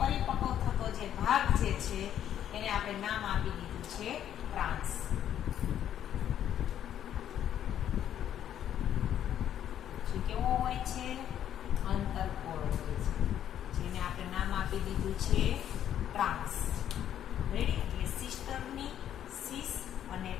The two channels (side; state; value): right; quieter; 10.4 dB